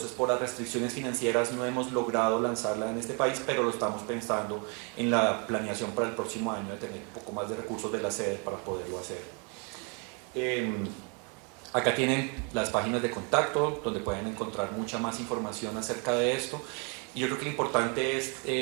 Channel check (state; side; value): quieter; left; 35.6 dB